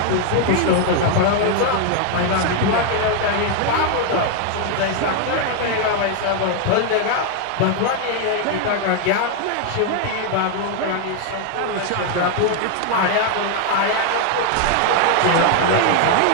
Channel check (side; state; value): both; different; correlation 0.01